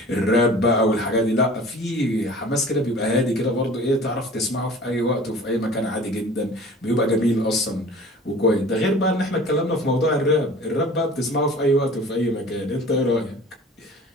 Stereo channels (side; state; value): both; normal; correlation 0.44